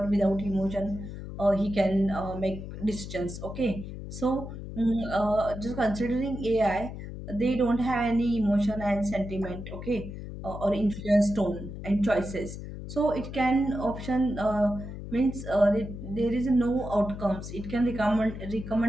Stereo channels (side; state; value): left; noise; hum, 9 dB below the sound